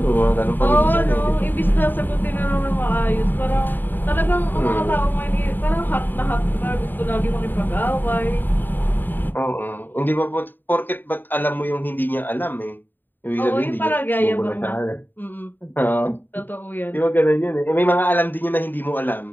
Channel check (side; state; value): right; late; 0.092 ms